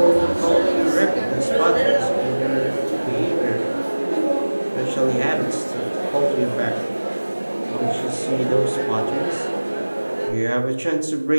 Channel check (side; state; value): both; inverted; correlation -1.00